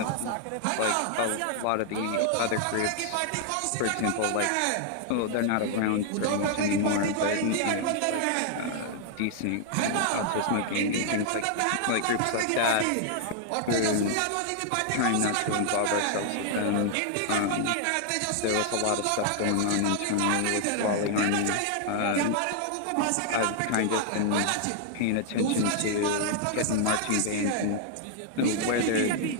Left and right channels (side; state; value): both; different; correlation 0.00